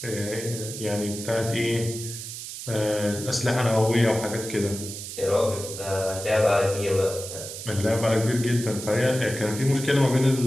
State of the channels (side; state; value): right; noise; hiss, 9 dB below the sound